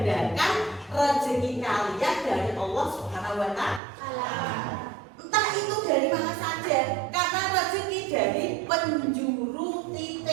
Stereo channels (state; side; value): drops out; left; at 3.8 s